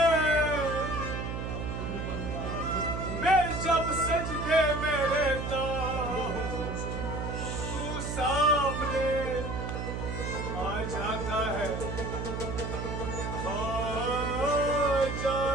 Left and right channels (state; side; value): noise; right; hum, 4 dB below the sound